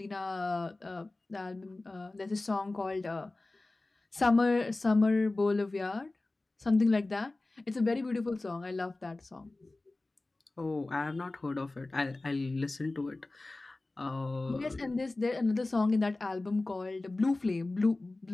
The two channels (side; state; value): right; quieter; 3.0 dB